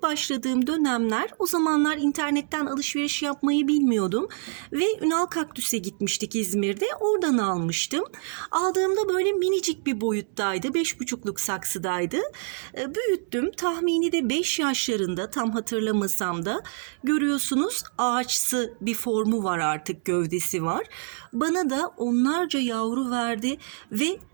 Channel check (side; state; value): left; silent; 56 dB below the other